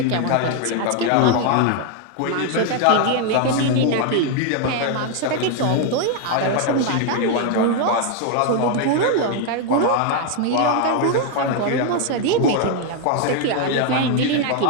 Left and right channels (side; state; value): both; different; correlation 0.01